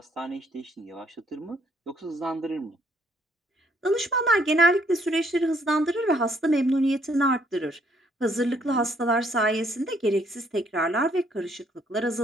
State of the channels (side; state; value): both; normal; correlation 0.67